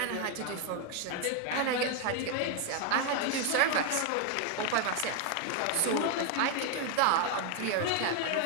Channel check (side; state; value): both; different; correlation 0.01